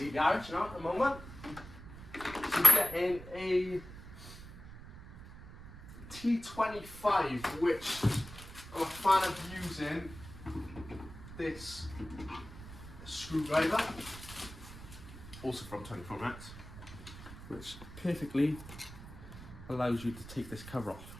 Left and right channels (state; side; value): noise; right; rumble, 14 dB below the sound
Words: garage now at the moment. So getting a T25, which I'm a fan of using this screwdriver, also from 24MX, which perfectly allows you to take this cover off,